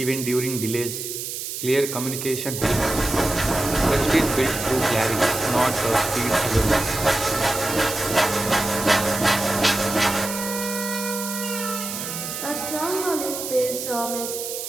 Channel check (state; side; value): noise; right; hiss, 6 dB below the sound